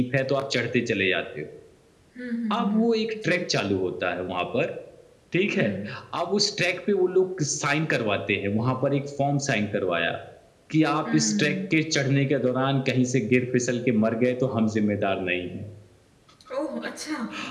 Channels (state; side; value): identical; both; correlation 1.00